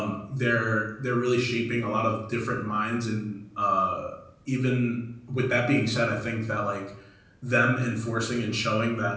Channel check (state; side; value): identical; both; correlation 1.00